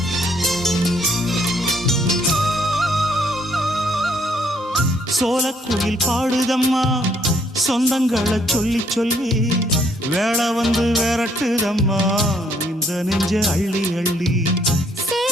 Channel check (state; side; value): normal; both; correlation 0.68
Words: சோலக்குயில் பாடுதம்மா சொந்தங்களை சொல்லி சொல்லி வேளை வந்து விரட்டுதம்மா இந்த நெஞ்ச அள்ளி அள்ளி